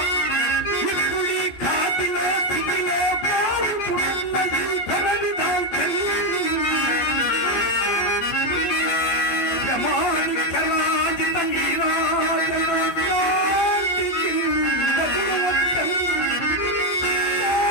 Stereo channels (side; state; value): right; late; 15 ms